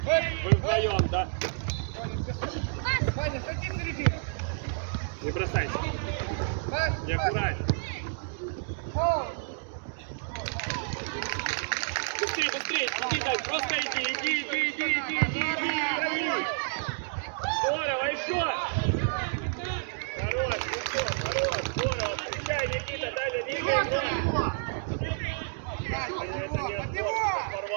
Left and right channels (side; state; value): left; silent; digital silence